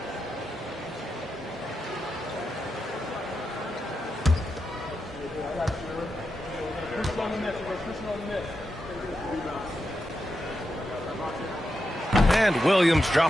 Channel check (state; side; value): normal; both; correlation 0.87